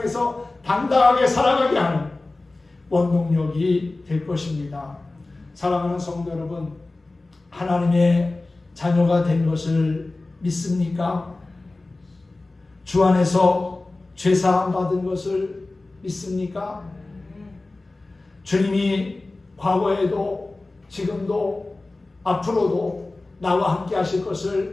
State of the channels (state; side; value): quieter; right; 3.1 dB